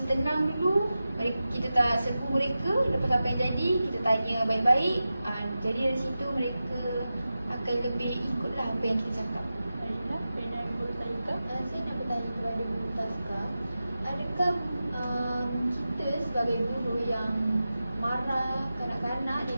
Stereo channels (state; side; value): inverted; both; correlation -0.93